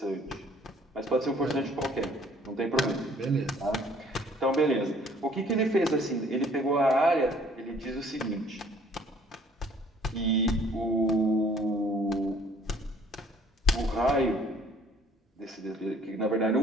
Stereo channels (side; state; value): both; normal; correlation 0.58